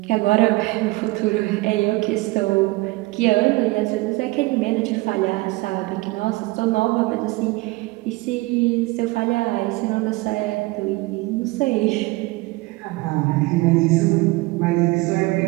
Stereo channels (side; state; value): left; quieter; 22.0 dB